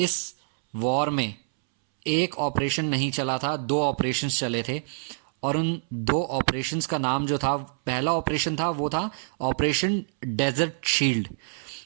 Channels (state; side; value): silent; left; 61 dB below the other